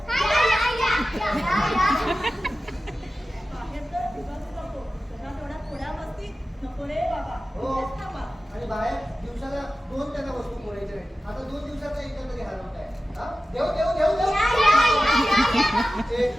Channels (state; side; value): normal; both; correlation 0.94